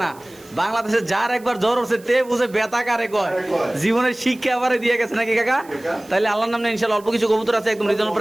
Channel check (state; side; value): noise; right; hiss, 24 dB below the sound